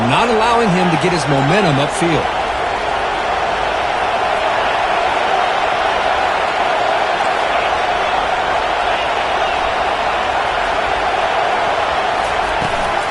not allowing him to get his momentum upfield.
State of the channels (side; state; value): both; identical; correlation 1.00